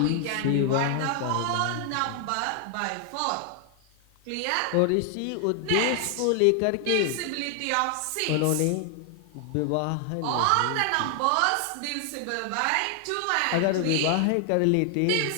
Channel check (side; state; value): both; different; correlation 0.00